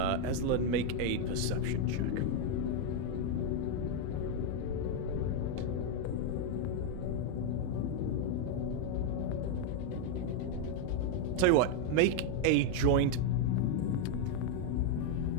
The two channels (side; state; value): both; different; correlation 0.00